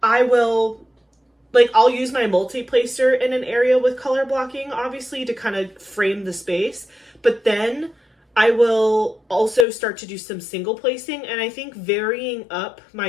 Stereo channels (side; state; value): right; drops out; at 9.7 s